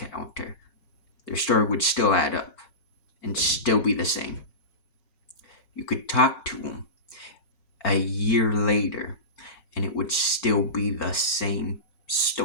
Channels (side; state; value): right; late; 5.4 ms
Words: Their story would still add up and still be the same. You could talk to them a year later and it would still be the same